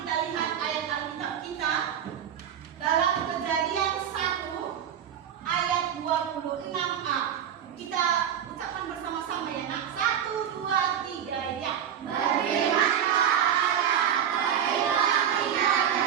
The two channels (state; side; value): quieter; left; 9.3 dB